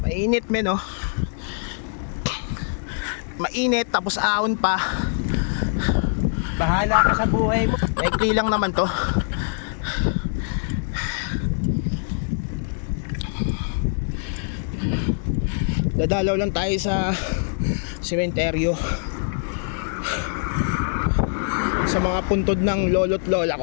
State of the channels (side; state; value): right; silent; digital silence